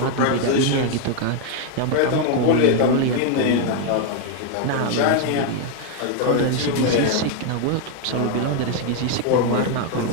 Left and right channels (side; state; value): both; different; correlation 0.00